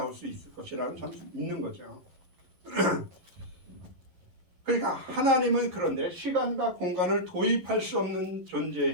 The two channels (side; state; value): left; late; 11 ms